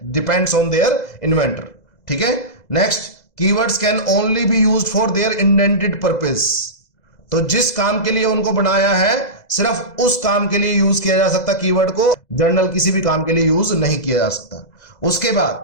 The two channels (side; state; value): right; late; 2.0 ms